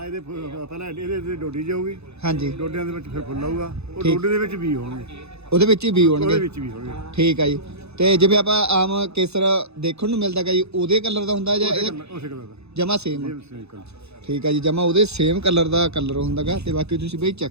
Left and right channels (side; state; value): left; late; 0.80 ms